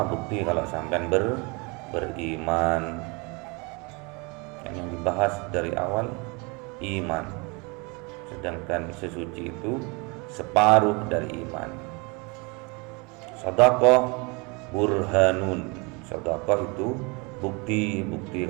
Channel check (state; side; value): quieter; left; 29.4 dB